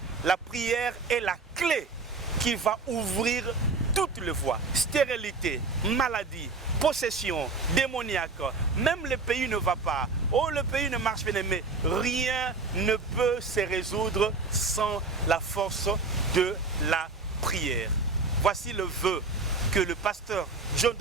La prière est la clé qui va ouvrir toutes les voies. Stérilité, maladie, possession, démoniaque. Même le pays ne va pas. Oh, le pays ne marche pas, mais rien ne peut se résoudre sans la force de la prière. Voici le vœu que le pasteur John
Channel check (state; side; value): quieter; left; 3.8 dB